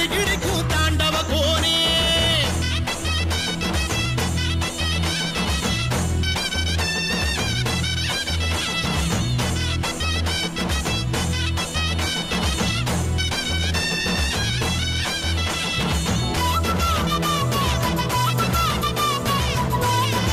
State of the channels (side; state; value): both; identical; correlation 1.00